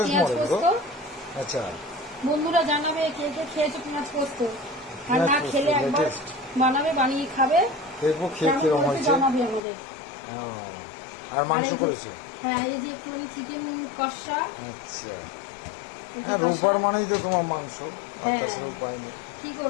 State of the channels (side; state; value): right; drops out; at 9.6 s